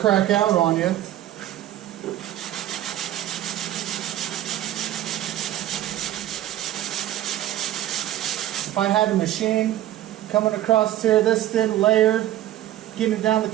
out on you. If I had a machine coming across here this thin, layered, getting it down the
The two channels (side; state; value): left; quieter; 13.3 dB